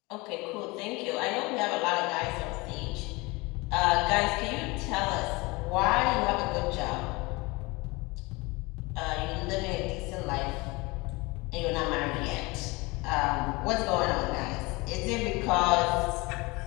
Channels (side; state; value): right; quieter; 24.6 dB